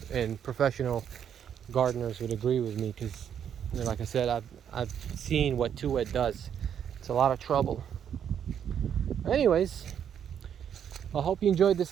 professional gardeners would agree with me, because, you know, like I said, I've seen what too wet does. It's a lot of trouble. Anyways, I hope you enjoyed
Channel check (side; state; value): left; quieter; 8.7 dB